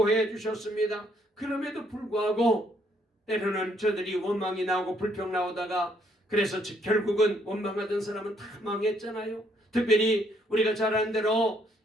주셨습니다. 그럼에도 불구하고 때로는 저들이 원망이 나오고 불평 나오다가 그래서 결국은 원망하던 사람은 다 망했잖아요. 특별히 우리가 잘 아는 대로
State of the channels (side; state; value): both; normal; correlation 0.70